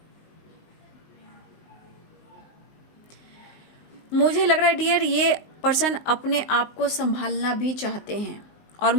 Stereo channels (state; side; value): late; right; 19 ms